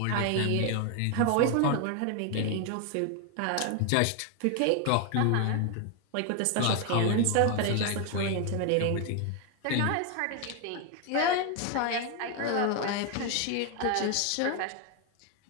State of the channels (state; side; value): different; both; correlation 0.01